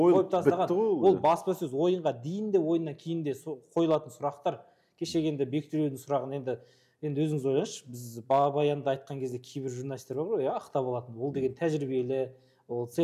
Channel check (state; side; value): identical; both; correlation 1.00